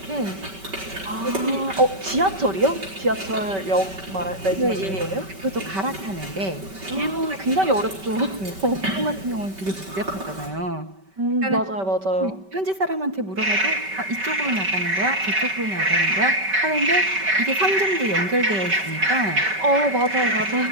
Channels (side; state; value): left; late; 5.2 ms